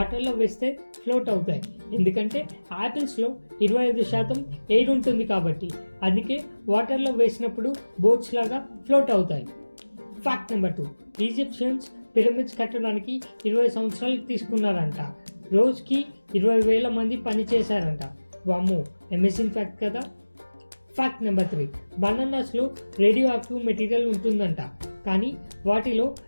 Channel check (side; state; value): both; inverted; correlation -1.00